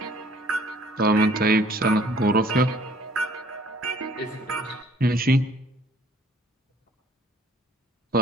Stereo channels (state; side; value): normal; both; correlation 0.57